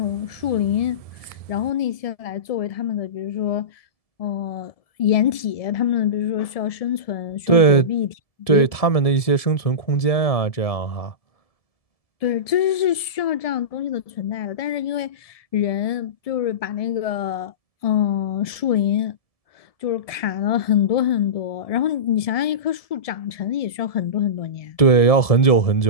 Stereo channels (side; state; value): right; late; 1.7 ms